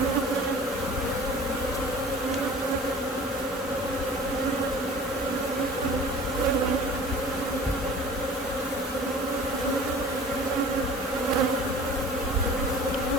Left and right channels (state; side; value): normal; both; correlation 0.44